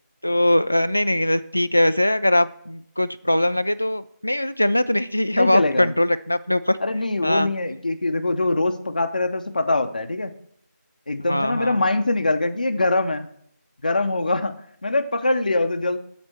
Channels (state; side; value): inverted; both; correlation -0.93